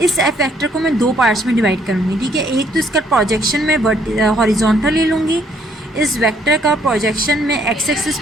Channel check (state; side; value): normal; both; correlation 0.67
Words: इस एफ वेक्टर को मैं 2 पार्ट्स में डिवाइड करूँगी, ठीक है। एक तो इसका प्रोजेक्शन मैं हॉरिजॉन्टल ले लूँगी, इस वेक्टर का प्रोजेक्शन मैं एक्स एक्सिस